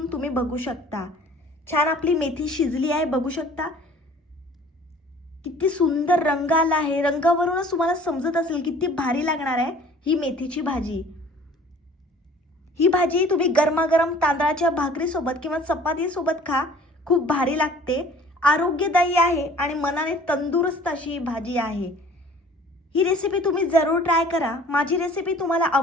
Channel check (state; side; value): normal; both; correlation 0.50